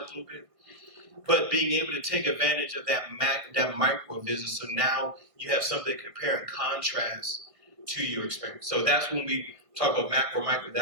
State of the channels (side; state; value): left; late; 1.6 ms